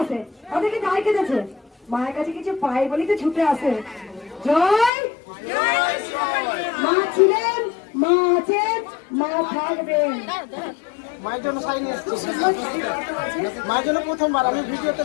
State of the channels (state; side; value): drops out; right; at 4.9 s